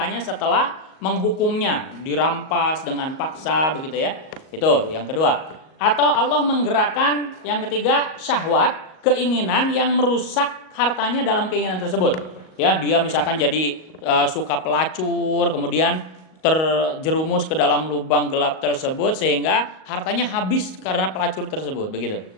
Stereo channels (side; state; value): right; late; 38 ms